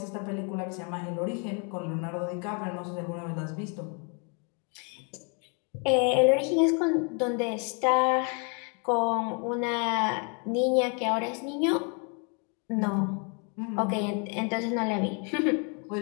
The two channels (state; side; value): quieter; right; 36.7 dB